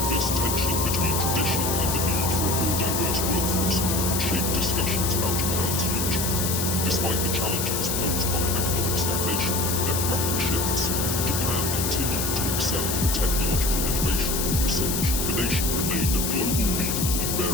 This tension between tradition and the need for a more diverse workforce would shape discussions about Japan's future. Despite the challenges posed by economic stagnation and demographic shifts, Japan continued to excel in technological innovation and research. The nation remained a global leader in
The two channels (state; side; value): noise; left; hiss, 1 dB below the sound